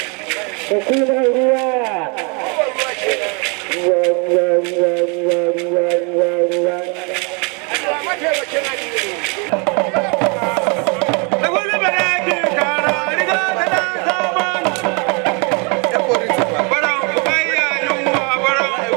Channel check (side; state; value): left; quieter; 33.5 dB